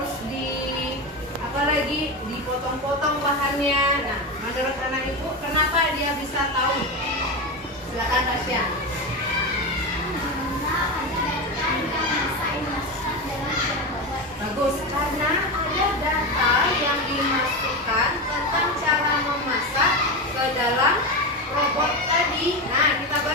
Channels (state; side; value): normal; both; correlation 0.18